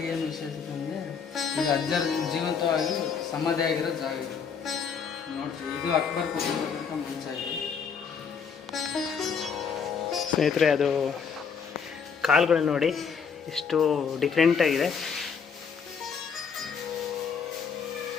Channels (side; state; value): right; quieter; 6.3 dB